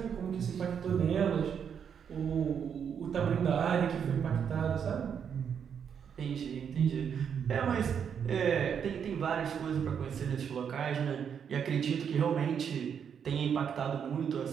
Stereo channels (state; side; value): quieter; left; 7.6 dB